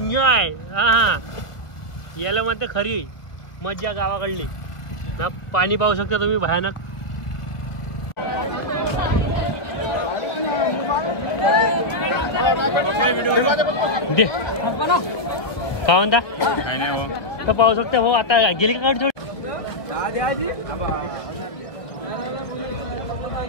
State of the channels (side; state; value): right; late; 1.7 ms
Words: हा याला म्हणते खरी मजा गावाकडली ना। पाणी पाहू शकता तुम्ही भयानक। का म्हणता तर पाहू शकता भाऊ, आता गेली का गाडी